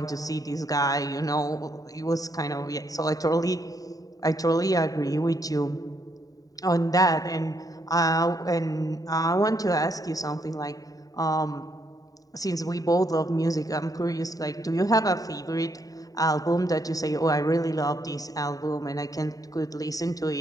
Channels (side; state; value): right; late; 0.18 ms